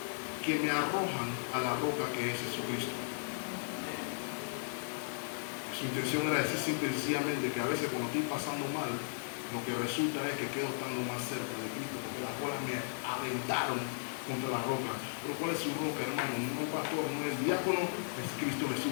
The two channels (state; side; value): silent; right; digital silence